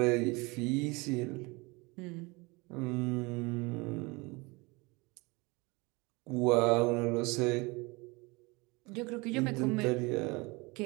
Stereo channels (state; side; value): quieter; left; 25.8 dB